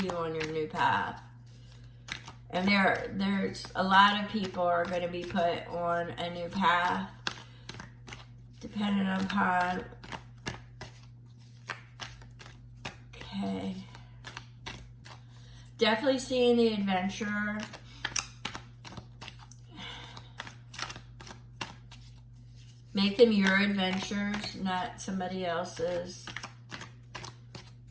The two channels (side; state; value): both; identical; correlation 1.00